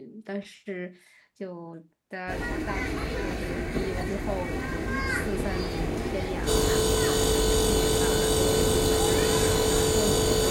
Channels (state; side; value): identical; both; correlation 1.00